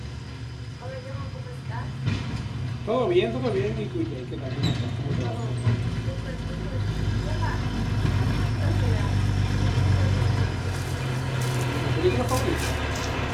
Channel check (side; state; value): both; identical; correlation 1.00